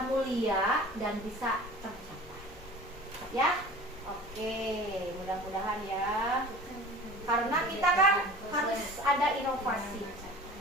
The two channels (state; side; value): normal; both; correlation 0.41